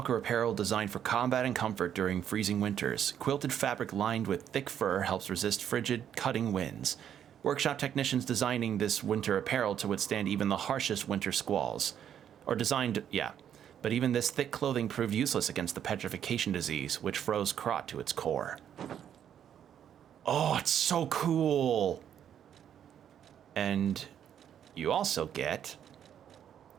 apparel designed for combat and comfort during freezing winters. Quilted fabric lined with thick fur helps resist frigid, cutting winds. Workshop technicians designing this winter apparel to withstand even the harshest winter squalls. Or designed, yeah. But even this thick clothing proved useless against the petrification disease, which froze Krot to its core. Oh, it's so cool! And you also get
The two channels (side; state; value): left; quieter; 9.4 dB